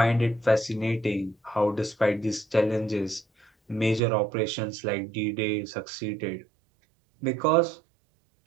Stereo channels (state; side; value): drops out; left; at 4.0 s